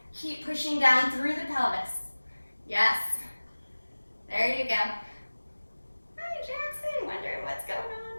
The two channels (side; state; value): both; inverted; correlation -1.00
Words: Keep pushing down through the pelvis. Yes. There you go. Hi, Jackson. Wondering what's going